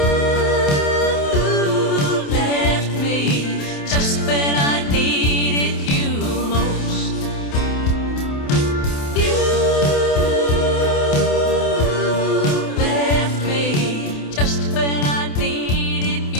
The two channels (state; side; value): late; right; 28 ms